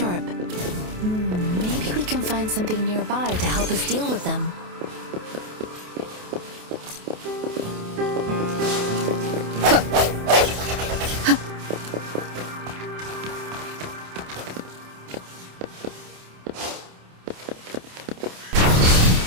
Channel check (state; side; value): late; left; 28 ms